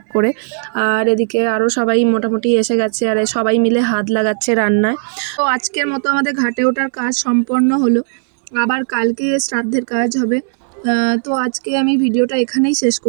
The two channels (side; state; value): left; silent; digital silence